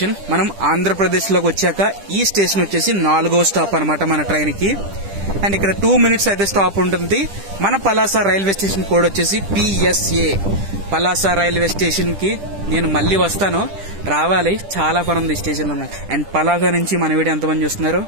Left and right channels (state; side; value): late; left; 10 ms